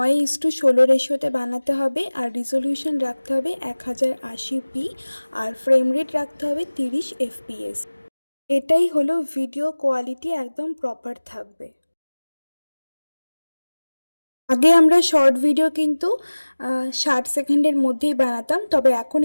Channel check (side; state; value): both; inverted; correlation -1.00